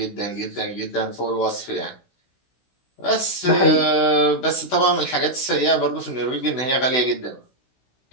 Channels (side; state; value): right; late; 16 ms